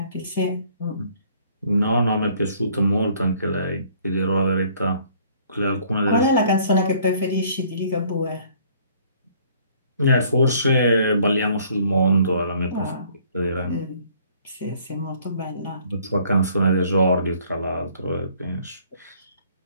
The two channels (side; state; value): both; inverted; correlation -0.59